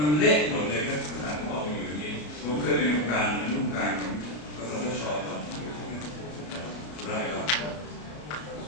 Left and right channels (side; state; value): right; late; 33 ms